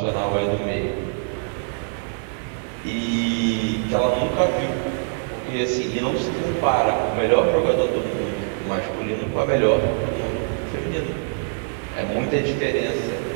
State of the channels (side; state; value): left; silent; 59 dB below the other